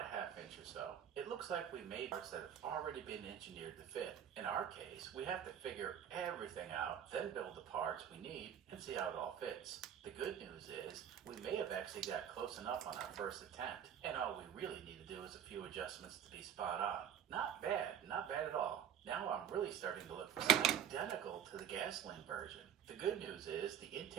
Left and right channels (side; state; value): left; quieter; 9.4 dB